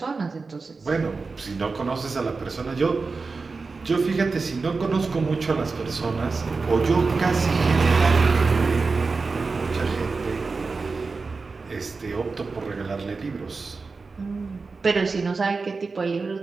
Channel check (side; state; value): left; quieter; 4.3 dB